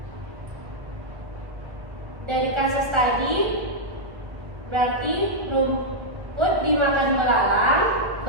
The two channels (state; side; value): late; left; 1.1 ms